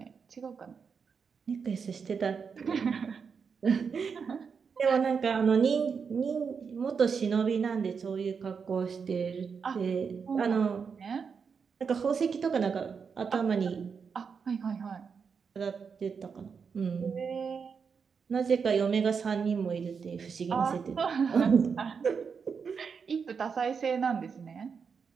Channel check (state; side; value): quieter; left; 6.0 dB